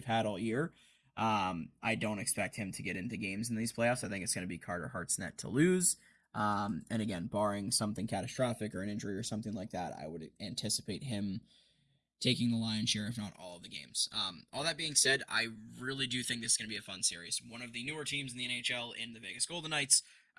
had all year. I don't expect him to get into games in these playoffs. I think it's going to be Carter Hart's net to lose. And again, barring something catastrophic or an injury or something like that, I would anticipate him taking the lion's share, if not all of the games. All that being said, I really do think this is going to be a fun series. One of the newer teams in the NHL in the Vegas Golden Knights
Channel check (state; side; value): identical; both; correlation 1.00